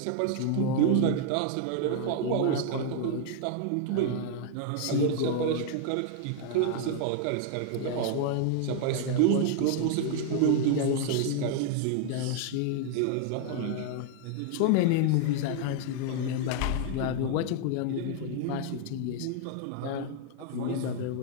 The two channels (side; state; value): both; different; correlation 0.00